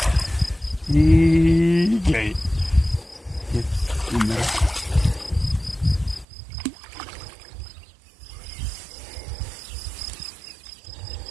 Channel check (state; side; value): drops out; left; at 6.2 s